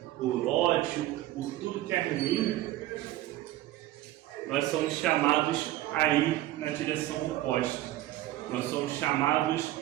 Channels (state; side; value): quieter; left; 15.1 dB